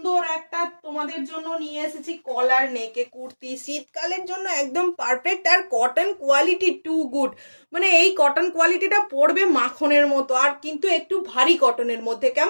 একটা তোমাদের জন্য নিয়ে এসেছি কলার নেকে কুর্তি। শীতকালের জন্য একদম পারফেক্ট, আর কটন কোয়ালিটি টু গুড। মানে এই কটন কোয়ালিটিটা পড়বে মাখনের মতো, আর কিন্তু একটু ভারী কটনের মধ্যে,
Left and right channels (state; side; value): inverted; both; correlation -1.00